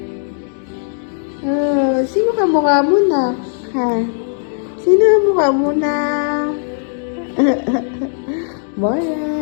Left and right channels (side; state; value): right; silent; digital silence